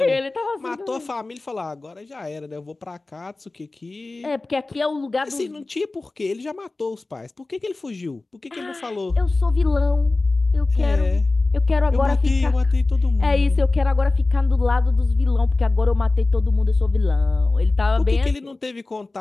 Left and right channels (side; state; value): right; quieter; 3.3 dB